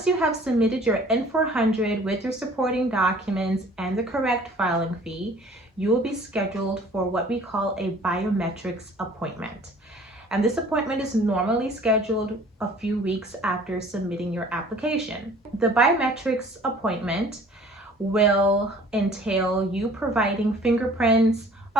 you have submitted your N400 with your supporting documents and the correct filing fee, you will be scheduled for what we call a biometrics appointment. And this appointment is normally scheduled a few weeks after submitting your application. The biometrics appointment will entail you providing fingerprints,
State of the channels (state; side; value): normal; both; correlation 0.51